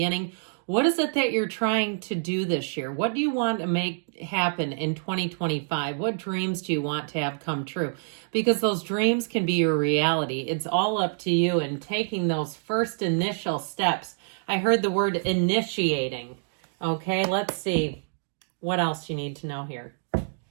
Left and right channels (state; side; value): silent; left; digital silence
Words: What is it that you're trying to do this year? What do you want to make happen in 2025? What dreams do you want to have come true? Because those dreams can be your reality. It's all up to you and taking those first initial steps. I heard the word initiating. Okay, let's see what else you need to know here.